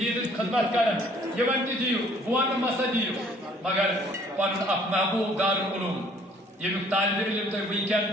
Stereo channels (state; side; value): normal; both; correlation 0.58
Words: خدمت کرن یمن تی دیو بوان مسا دیو مگر پن اپ محبوب دار علوم یم طالب علم تو ویکن